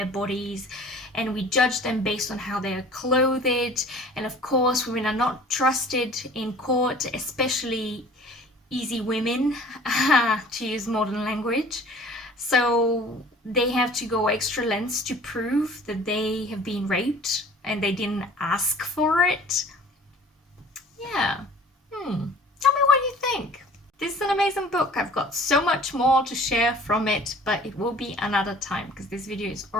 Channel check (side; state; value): both; normal; correlation 0.48